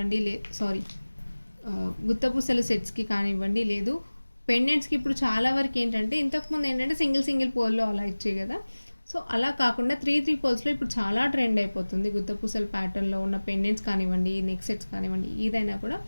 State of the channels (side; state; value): both; inverted; correlation -1.00